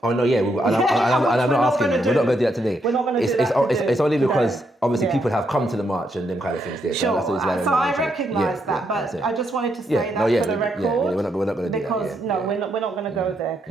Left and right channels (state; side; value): normal; both; correlation 0.78